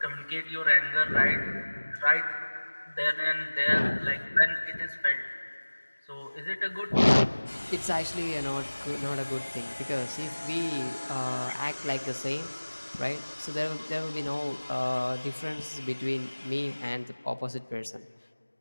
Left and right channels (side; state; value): both; inverted; correlation -1.00